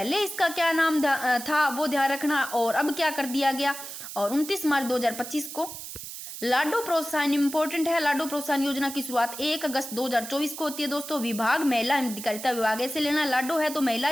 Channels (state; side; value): noise; right; hiss, 10 dB below the sound